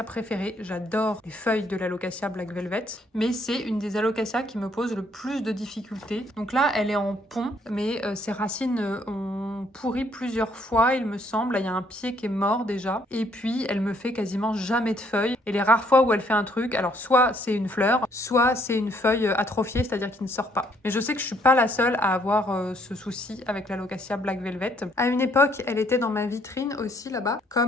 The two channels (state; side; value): normal; both; correlation 0.67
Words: préférées. J'adore les feuilles de l'Alocasia Black Velvet, mais c'est une des Alocasias qui me pose le plus de difficultés. Donc là, elle est en pont, mais ses racines ont pourri plusieurs fois, il me semble. Là, il y a un pied qui est mort déjà. Et puis, elle me fait quasiment jamais de feuilles. Et les rares fois où elle fait un truc, alors soit c'est une fleur, soit c'est une feuille atrophiée, c'est-à-dire qui ne sort pas. Mais je sais que je suis pas la seule à avoir ce souci avec l'Alocasia Black Velvet. À une époque, elle était dans ma vitrine aussi là-bas,